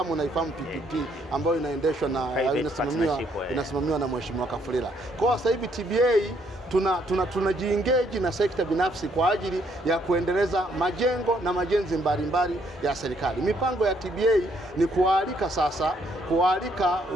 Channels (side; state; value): both; normal; correlation 0.69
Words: unaifahamu PPP, ambayo inaendeshwa na inasimamiwa na Mheshimiwa Kafulila. Kwa sasa hivi TBA tunajiengage na sekta binafsi kwa ajili ya kuendeleza majengo na majenzi mbalimbali ya serikali. Mipango ya TBA ni kualika